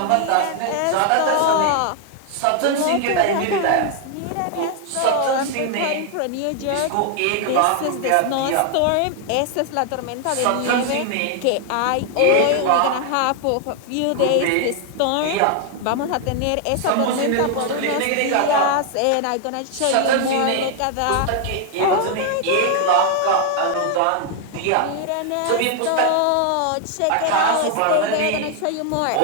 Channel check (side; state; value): both; different; correlation 0.00